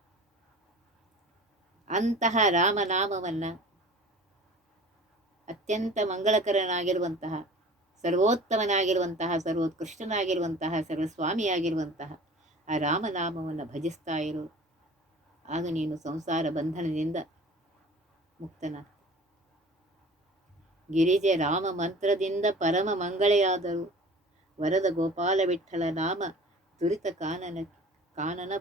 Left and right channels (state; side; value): normal; both; correlation 0.43